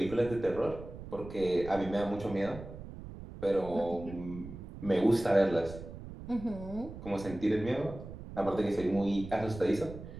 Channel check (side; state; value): right; noise; rumble, 12 dB below the sound